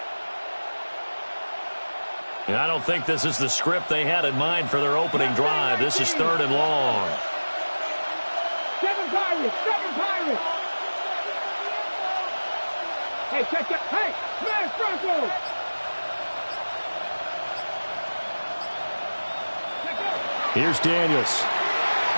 And I don't think this is the script they had in mind for their opening drive. This is 3rd and long. 7 Pirates! Hey, check that. Hey, smash Broncos! Here's Daniels.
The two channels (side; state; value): both; inverted; correlation -1.00